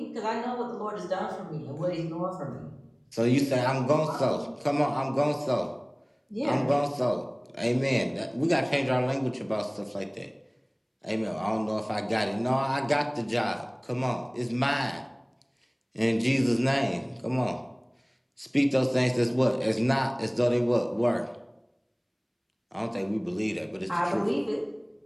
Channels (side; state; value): both; identical; correlation 1.00